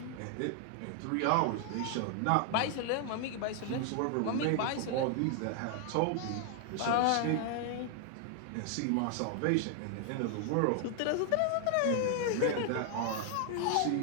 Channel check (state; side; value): different; both; correlation 0.00